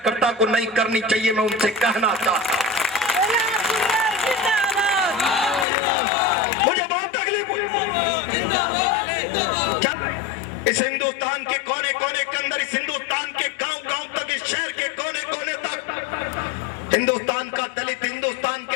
को नहीं करनी चाहिए। मैं उनसे कहना चाहता हूं, मुझे बहुत तकलीफ हुई। इस हिंदुस्तान के कोने कोने के अंदर, इस हिंदुस्तान के गांव गांव तक, इस शहर के कोने कोने तक हिंदुस्तान का दलित, हिंदुस्तान के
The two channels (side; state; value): right; drops out; at 5.7 s